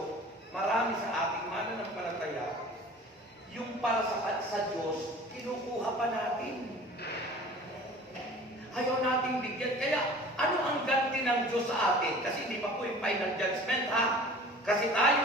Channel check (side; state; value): both; normal; correlation 0.44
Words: marami sa ating mananampalataya, yung para sa Diyos, kinukuha pa natin. Ayaw nating bigyan. Kaya, ano ang ganti ng Diyos sa atin? Kasi hindi pa po yung final judgment, ha? Kasi